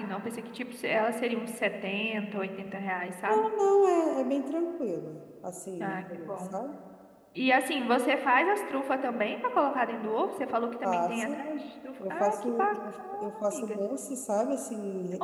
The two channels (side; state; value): both; identical; correlation 1.00